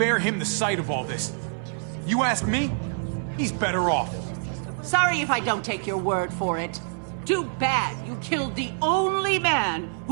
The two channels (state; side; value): silent; left; 59 dB below the other